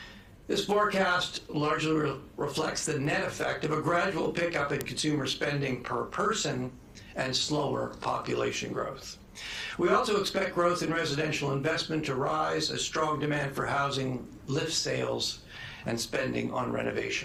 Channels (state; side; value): identical; both; correlation 1.00